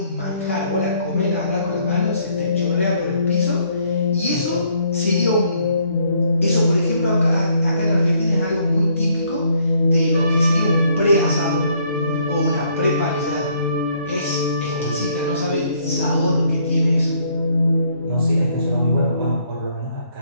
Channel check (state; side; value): inverted; both; correlation -0.67